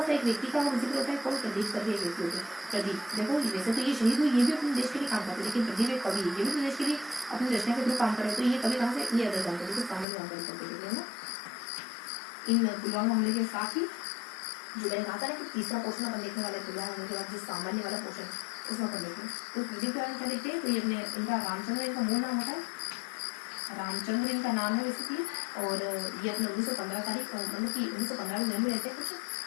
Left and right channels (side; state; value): right; drops out; at 10.1 s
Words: सा एक व्यक्ति का जिक्र होता है, कौन प्रदीप करके एक व्यक्ति होते हैं। प्रदीप देखो वैसे तो ये शहीद हुई, ये भी अपने देश के लिए काम करते हैं, लेकिन प्रदीप एक कवि, ये भी तो देश के लिए अपनी रचना के थ्रू काम करे। तो ये कवि कहाँ से, ये अदर जानकारी को सामान्य जानकारी करते हैं ना। इन पुलवामा हमले के साथ ही जो मैंने कहा था ना कि तीसरा पोर्शन अपन देखने वाले पुलवामा हमले के बाद जो सामान्य वाला पोर्शन है उसमें अपन देखते हैं। तो प्रदीप के बारे में क्या देखते हैं, तो ये अपने इनका रामचंद्र इनका मूल नाम होता है, रामचंद्र इनका नाम है बेसिकली। और ये अपने 1915 तारीख मतलब कि 1915 में जन्म लेते हैं कुछ,